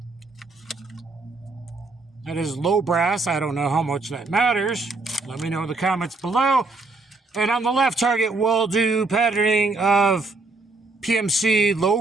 That is low brass. I don't know how much that matters. Let me know in the comments below. And on the left target, we'll do patterning of PMC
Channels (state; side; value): quieter; left; 3.5 dB